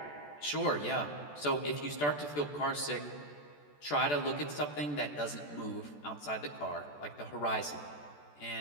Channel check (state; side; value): late; right; 14 ms